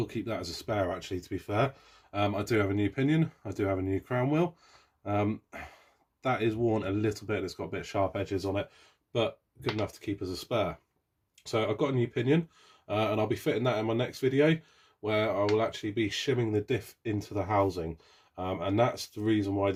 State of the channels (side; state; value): both; identical; correlation 1.00